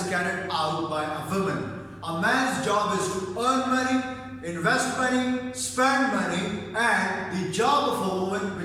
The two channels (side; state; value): both; identical; correlation 1.00